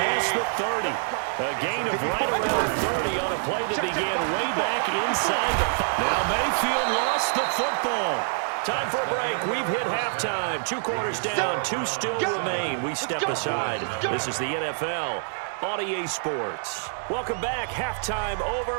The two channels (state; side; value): silent; left; digital silence